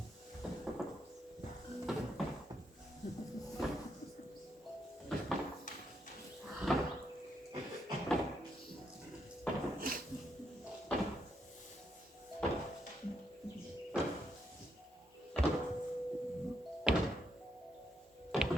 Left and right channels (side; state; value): both; normal; correlation 0.78